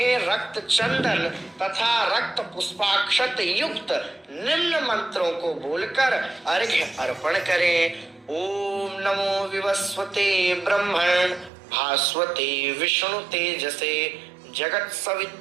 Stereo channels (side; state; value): left; drops out; at 11.5 s